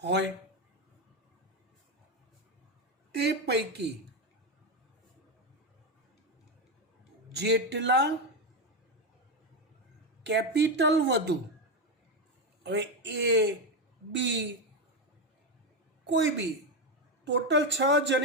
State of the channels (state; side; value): normal; both; correlation 0.09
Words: હોય. તે પૈકી જેટલા કેપિટલ વધુ, હવે એ બી કોઈ બી ટોટલ 6